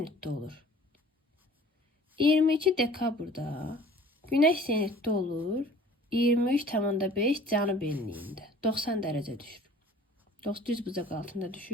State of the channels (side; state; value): both; normal; correlation 0.48